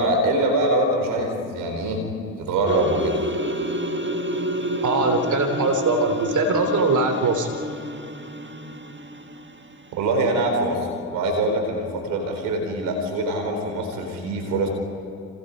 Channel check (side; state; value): both; normal; correlation -0.06